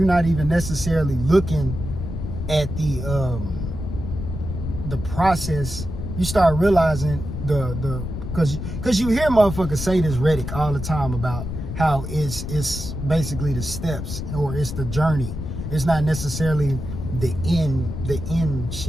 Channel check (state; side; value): noise; left; rumble, 6 dB below the sound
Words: not even necessarily looking at the process. You start realizing because you hear motherfuckers say this rhetoric all the time about how it's basically the steps, or it's the journey. It's not necessarily the end